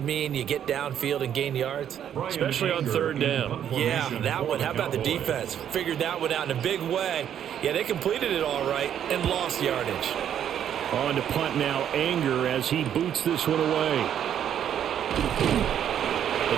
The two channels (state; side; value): quieter; left; 9.6 dB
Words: mean you get downfield and gain yards? Especially on 3rd down. Yeah, that one. How about the defense? Figured that one out in a big way. Yeah, they completed it all right and lost yardage. On to punt now, Anger as he boots this one away.